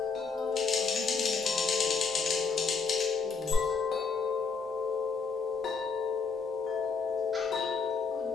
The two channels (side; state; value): right; quieter; 5.1 dB